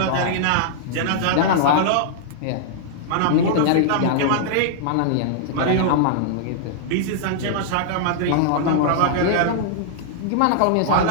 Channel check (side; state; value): both; different; correlation -0.01